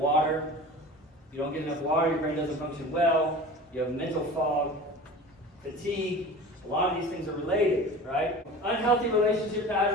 You don't get enough water, your brain doesn't function well. You have mental fog, fatigue. A lot of these things are related, right? Unhealthy relationship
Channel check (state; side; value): normal; both; correlation 0.37